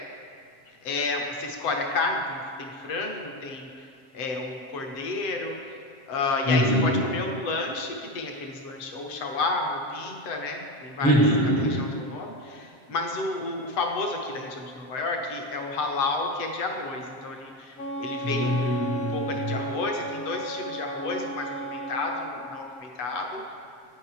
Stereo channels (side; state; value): right; late; 7.5 ms